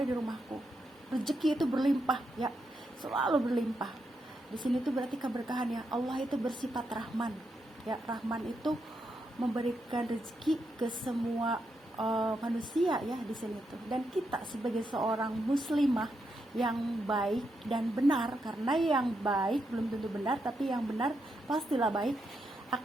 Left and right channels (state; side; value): normal; both; correlation 0.82